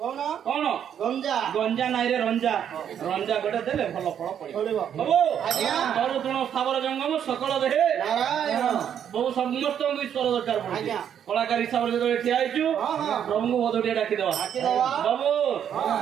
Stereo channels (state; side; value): quieter; left; 9.0 dB